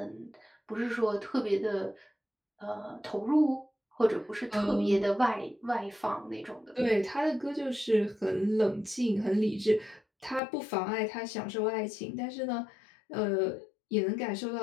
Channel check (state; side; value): drops out; right; at 10.4 s